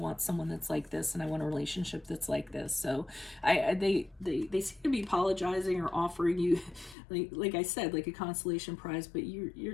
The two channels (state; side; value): drops out; right; at 7.0 s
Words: someone that's like this, and I want a relationship that's like this. So they seem to be apologizing or offering you, like I said, like a consolation prize, but